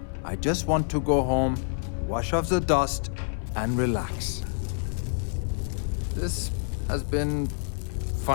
I just want to go home, wash off the dust, and relax. This has been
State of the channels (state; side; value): silent; right; 57 dB below the other